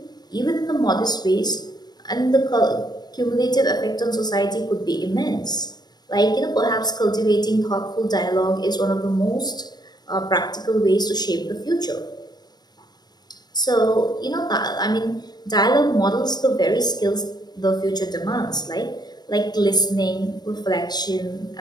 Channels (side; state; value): right; late; 0.20 ms